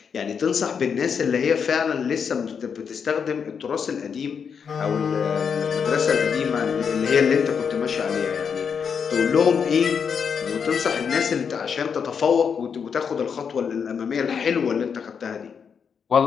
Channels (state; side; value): quieter; right; 6.7 dB